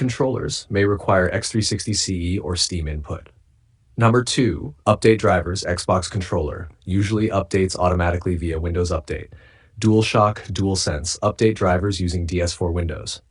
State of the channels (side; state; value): both; identical; correlation 1.00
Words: may require X360 CE or Steam Input. Number 2, update drivers Xbox controller, usually updates automatically via Windows Update. DualShock DualSense, update drivers using DS4 Windows.